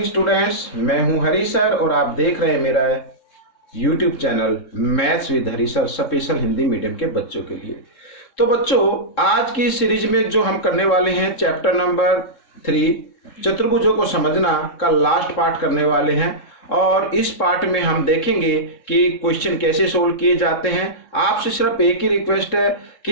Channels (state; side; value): late; right; 3.7 ms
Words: students, मैं हूं हरी sir और आप देख रहे हैं मेरा YouTube channel maths with Hari sir special Hindi medium के बच्चों के लिए। तो बच्चों, आज की सीरीज में जो हम करने वाले हैं चैप्टर नंबर 3 चतुर्भुजों को समझना का लास्ट पार्ट करने वाले हैं और इस पार्ट में हम देखेंगे कि क्वेश्चन कैसे सोल्व किए जाते हैं। आपसे सिर्फ एक ही रिक्वेस्ट है